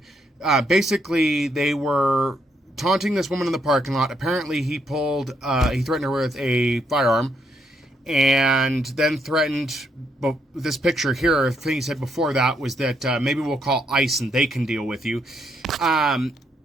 basically they were taunting this woman in the parking lot. Apparently he threatened her with a firearm and then threatened, but this picture here, the thing he said before that was that maybe we'll call ICE and they can deal with you.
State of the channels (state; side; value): normal; both; correlation 0.75